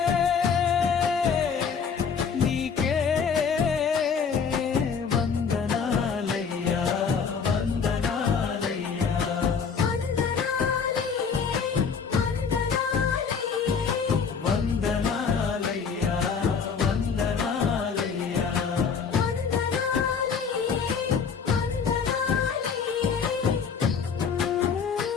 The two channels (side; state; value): right; quieter; 6.1 dB